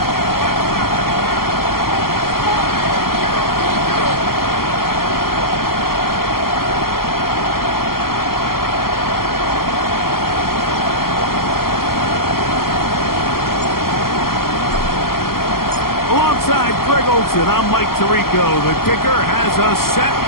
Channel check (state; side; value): late; right; 0.93 ms